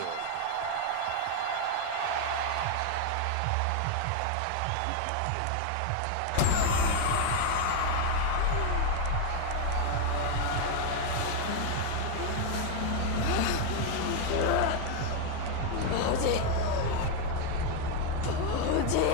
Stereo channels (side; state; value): both; different; correlation 0.01